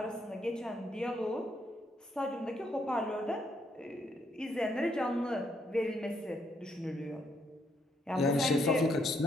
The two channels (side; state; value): both; normal; correlation 0.74